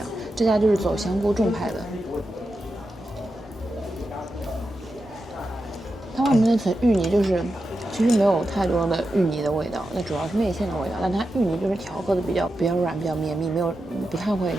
这家就是走香菇重派的。它外面那层芋泥就是其实没有太多的芋泥的味道，那主要是内馅的味道，但它芋泥就是调和的比较软，比较绵密，不太会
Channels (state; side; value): normal; both; correlation 0.89